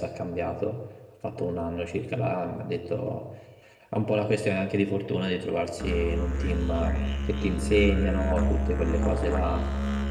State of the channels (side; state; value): both; identical; correlation 1.00